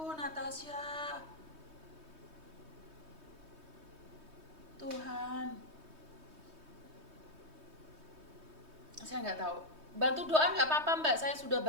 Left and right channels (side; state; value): left; late; 3.2 ms